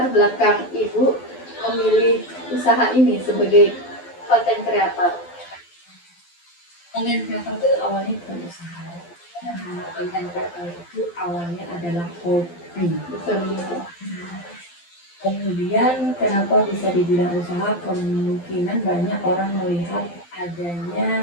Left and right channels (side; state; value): right; late; 12 ms